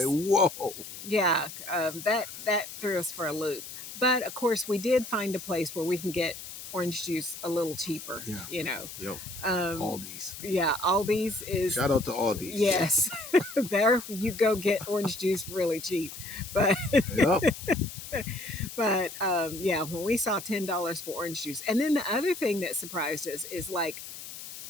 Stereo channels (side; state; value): left; noise; hiss, 12 dB below the sound